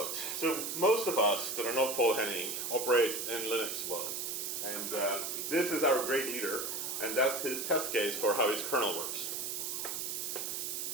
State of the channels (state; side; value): noise; right; hiss, 3 dB below the sound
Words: So most of us that are not Paul Henning operate in Linux world, and this is our great leader, and that's his test case for how his kernel works.